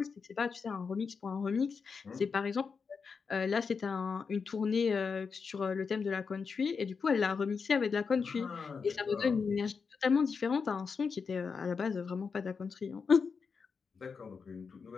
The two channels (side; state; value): right; quieter; 5.4 dB